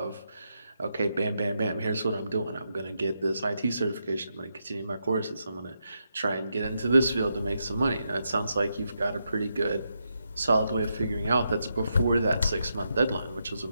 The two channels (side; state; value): both; inverted; correlation -0.83